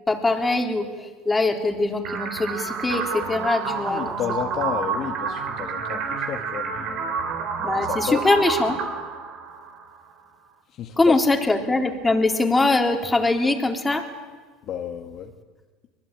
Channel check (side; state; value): both; normal; correlation 0.77